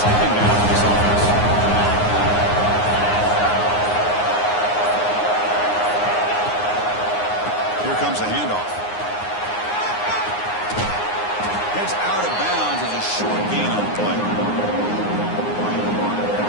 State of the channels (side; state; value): right; late; 9.6 ms